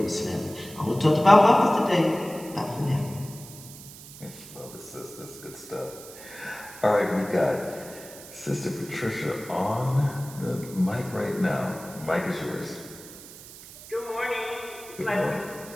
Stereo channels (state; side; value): noise; right; hiss, 16 dB below the sound